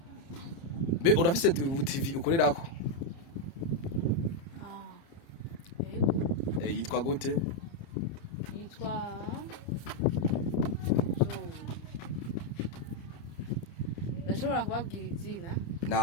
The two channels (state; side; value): late; right; 30 ms